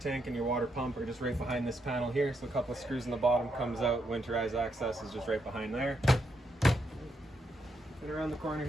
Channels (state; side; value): normal; both; correlation 0.79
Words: and your water pump are just right behind this panel here. So a couple of screws in the bottom comes out. Winterized access is just right behind there. And around the corner